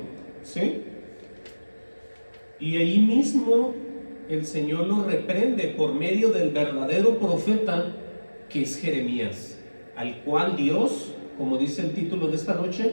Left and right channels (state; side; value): inverted; both; correlation -1.00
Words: ¿sí? Y ahí mismo el Señor lo reprende por medio del verdadero profeta que es Jeremías, al cual Dios, como dice el título de esta